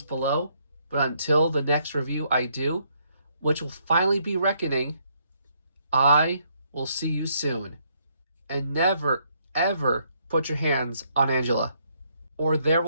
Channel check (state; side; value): inverted; both; correlation -0.71